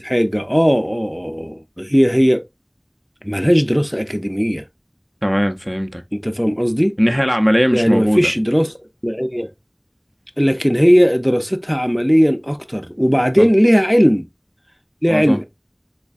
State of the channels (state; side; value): identical; both; correlation 1.00